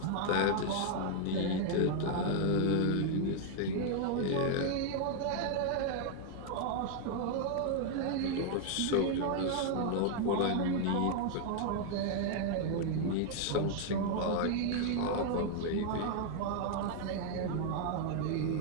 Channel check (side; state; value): both; different; correlation 0.00